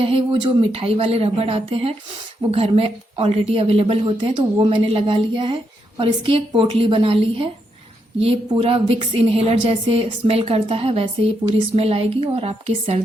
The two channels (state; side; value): normal; both; correlation 0.80